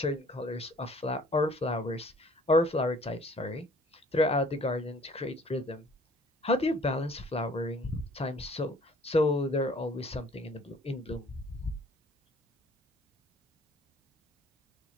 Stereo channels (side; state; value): both; normal; correlation 0.55